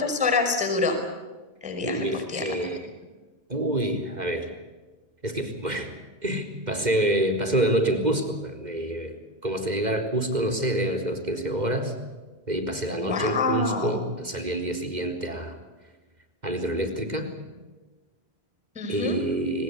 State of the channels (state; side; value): late; left; 2.1 ms